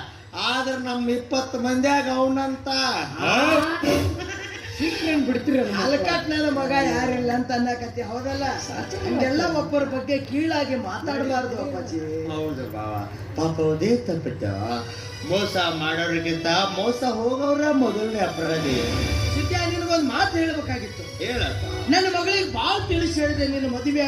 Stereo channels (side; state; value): both; identical; correlation 1.00